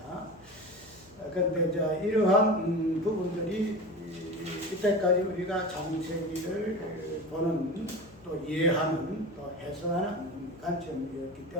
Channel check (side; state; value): left; noise; hum, 27 dB below the sound